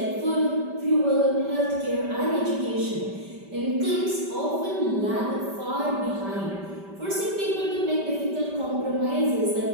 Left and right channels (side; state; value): left; late; 5.1 ms